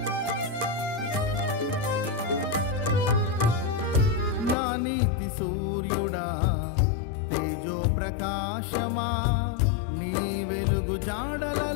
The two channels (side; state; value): right; drops out; at 4.5 s